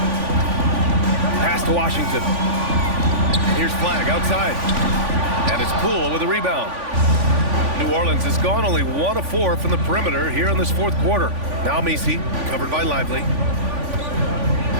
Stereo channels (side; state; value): left; late; 3.5 ms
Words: Pass to Washington. Here's Flag outside. And it's Poole with a rebound. New Orleans has gone only 1 of 4 from the perimeter here in this fourth quarter. Now Misi, covered by Lively.